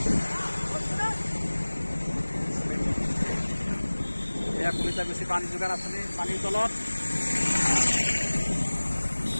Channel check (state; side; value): inverted; both; correlation -1.00